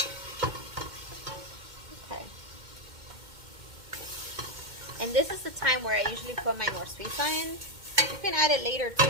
And this is the time where I usually put my norsuiza in. You can add it later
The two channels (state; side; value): late; left; 2.1 ms